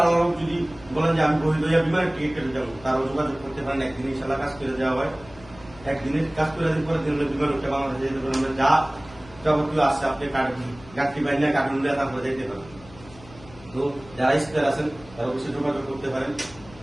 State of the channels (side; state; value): left; noise; hum, 20 dB below the sound